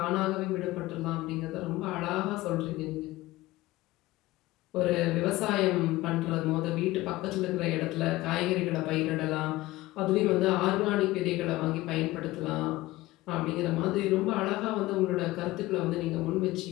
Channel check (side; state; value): right; quieter; 18.2 dB